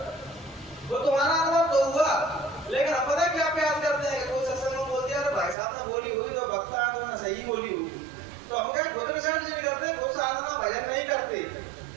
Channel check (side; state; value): left; drops out; at 5.6 s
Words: वो तुम्हारा अनुभव तो हुआ। लेकिन अब पता क्या प्रयास करते हैं, कोई सत्संग में बोल दिया भाई साहब ने बोली हुई तो वक्ता तो ना सही बोली हुई, तो हम क्या खुद रिसर्च नहीं करते, खुद साधना भजन नहीं करते,